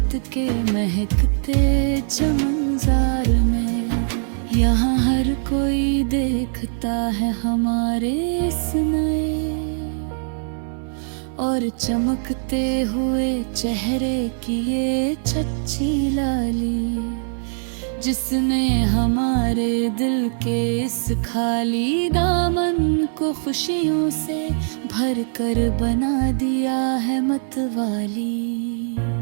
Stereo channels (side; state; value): left; silent; digital silence